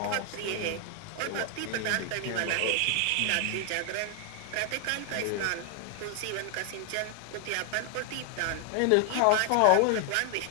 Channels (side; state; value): both; different; correlation 0.00